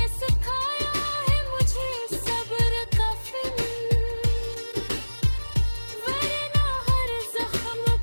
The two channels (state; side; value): inverted; both; correlation -1.00